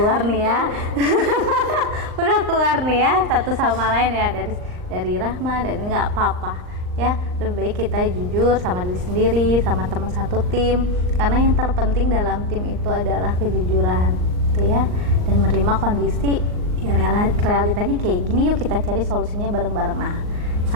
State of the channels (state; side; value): late; left; 39 ms